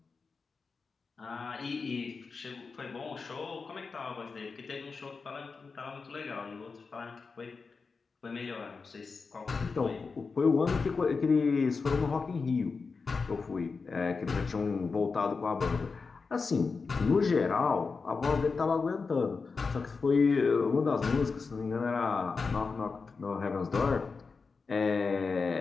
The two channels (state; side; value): quieter; right; 4.7 dB